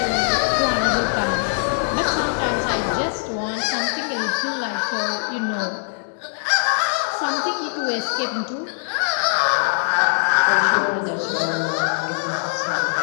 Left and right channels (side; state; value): right; silent; digital silence